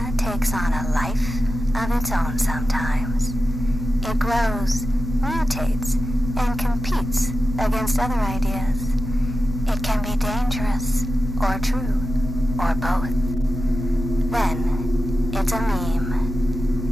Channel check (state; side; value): noise; left; hum, 15 dB below the sound